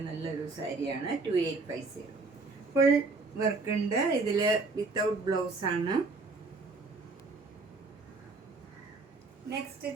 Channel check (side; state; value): left; quieter; 3.8 dB